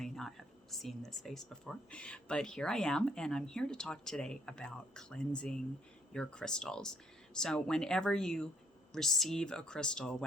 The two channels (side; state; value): both; normal; correlation 0.68